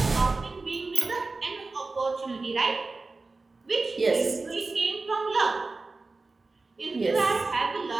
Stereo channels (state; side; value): quieter; left; 3.6 dB